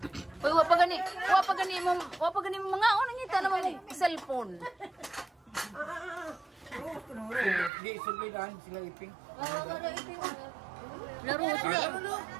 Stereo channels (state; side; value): drops out; left; at 7.7 s